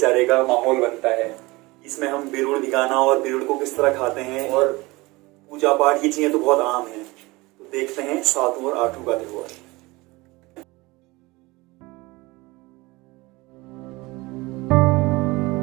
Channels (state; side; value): quieter; left; 22.4 dB